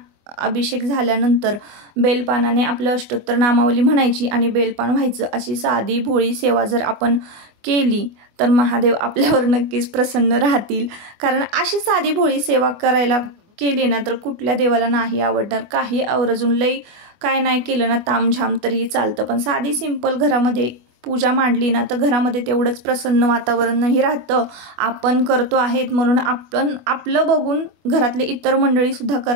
अभिषेक झाल्यानंतर बेलपानाने आपलं अष्टोत्तर नामावली म्हणायची आणि बेलपान व्हायचं। अशी साधी भोळी सेवा जर आपण केली तर महादेव आपल्यावर नक्कीच प्रसन्न राहतील। कारण अशी साधी भोळी सेवा करायला केली ना तर कुठल्या देवाला नाही आवडणार। काही आवर्जून लई काय नाही केलं ना तामझाम तरीही चालतं, पण साधी सिंपल घरामध्ये पूजा मांडली ना तर घरामध्ये तेवढंच प्रसन्न वातावरणही राहतं। आपण करतो आहेत म्हणून आपण आपलं बघून घरातले इतर मंडळी सुद्धा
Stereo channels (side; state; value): left; late; 24 ms